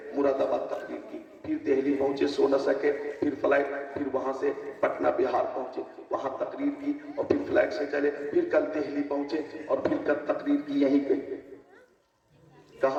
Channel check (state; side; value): identical; both; correlation 1.00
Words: مراد آباد تقریر کی، پھر دہلی پہنچے، سو نہ سکے، پھر فلائٹ، پھر وہاں سے پٹنہ بہار پہنچے، وہاں تقریر کی، اور پھر فلائٹ سے چلے، پھر کل دہلی پہنچے اور پھر کل تقریر کی یہیں پہ.